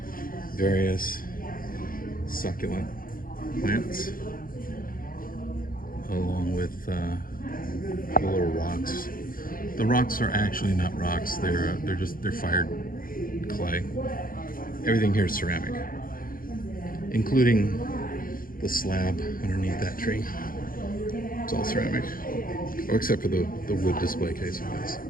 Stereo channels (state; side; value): late; right; 0.41 ms